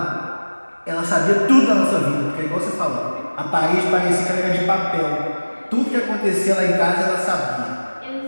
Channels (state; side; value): inverted; both; correlation -1.00